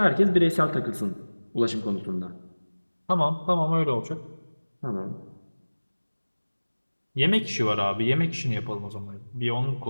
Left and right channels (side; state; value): both; inverted; correlation -1.00